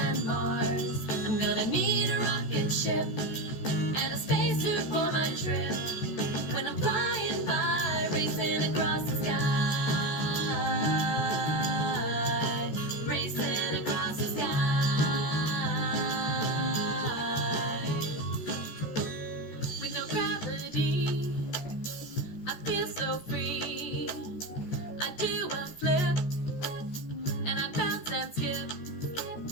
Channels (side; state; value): right; late; 14 ms